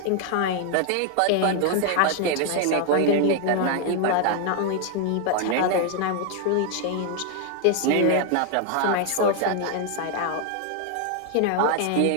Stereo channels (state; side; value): different; both; correlation 0.00